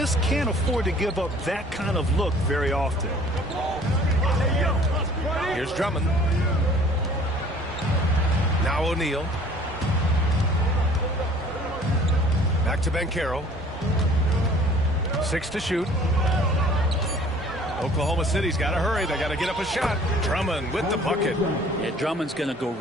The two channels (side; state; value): both; normal; correlation 0.52